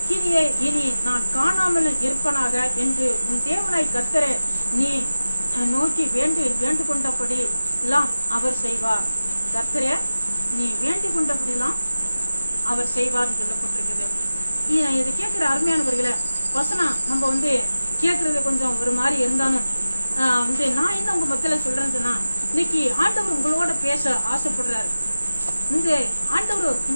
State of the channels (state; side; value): inverted; both; correlation -0.95